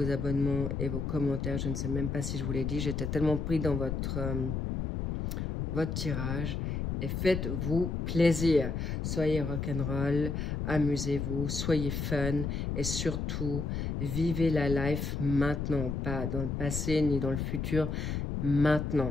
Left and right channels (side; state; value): left; noise; rumble, 2 dB below the sound